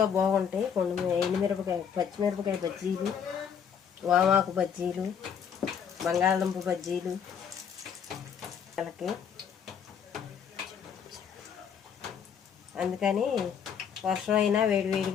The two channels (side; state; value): right; quieter; 7.6 dB